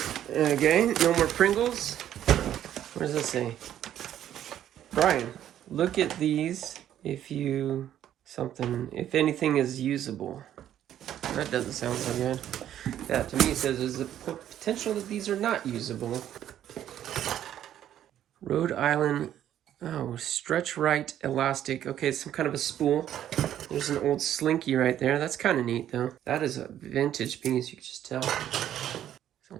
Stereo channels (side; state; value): left; quieter; 11.1 dB